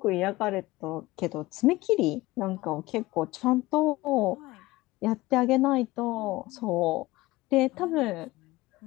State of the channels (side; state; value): right; quieter; 19.3 dB